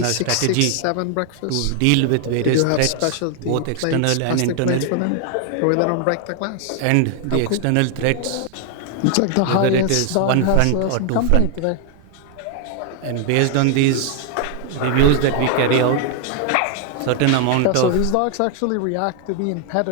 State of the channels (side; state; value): both; different; correlation 0.00